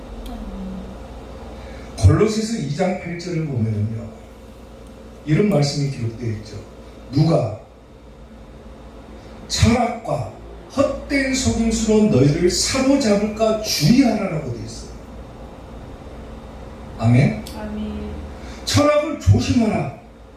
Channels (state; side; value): identical; both; correlation 1.00